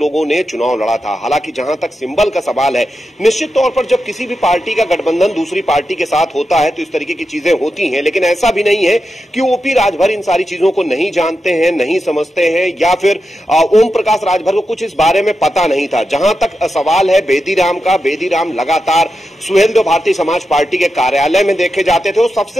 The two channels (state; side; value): normal; both; correlation 0.89